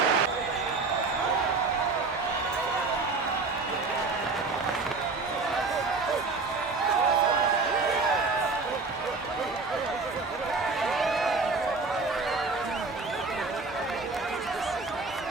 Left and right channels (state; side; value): quieter; left; 4.0 dB